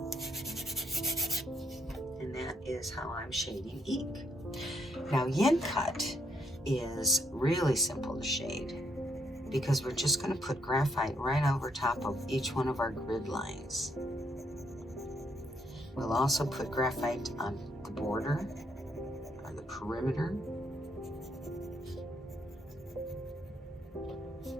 And that is how I'm shading eke. Now yin cut is really simple to shade because we're just going to put graphite right over top of each one of our grid lines. We'll also put graphite on the border or the perimeter.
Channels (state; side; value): normal; both; correlation 0.73